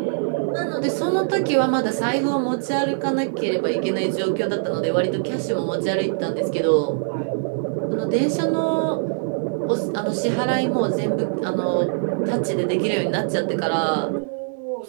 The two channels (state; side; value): silent; left; digital silence